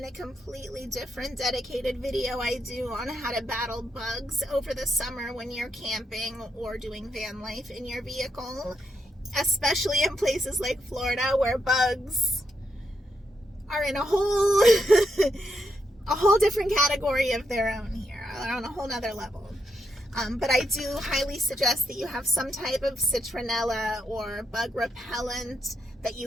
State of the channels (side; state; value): both; normal; correlation 0.81